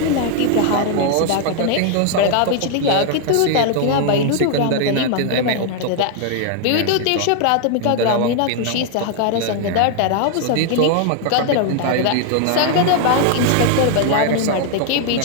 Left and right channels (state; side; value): different; both; correlation 0.00